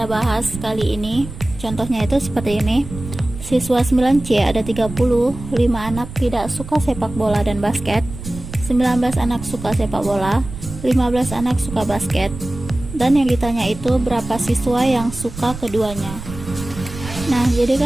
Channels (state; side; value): noise; right; rumble, 12 dB below the sound